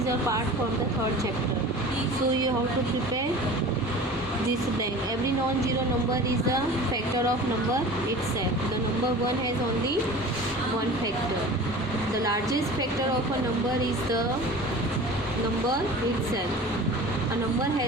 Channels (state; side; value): normal; both; correlation 0.39